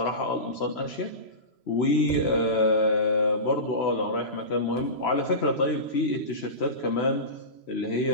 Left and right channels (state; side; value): late; right; 3.0 ms